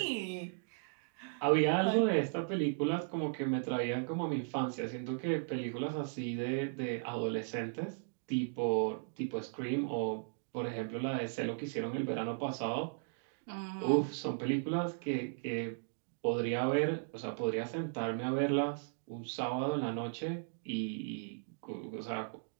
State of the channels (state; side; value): silent; left; digital silence